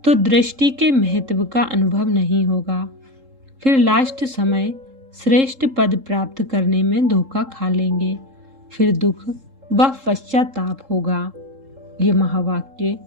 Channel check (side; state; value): left; late; 3.7 ms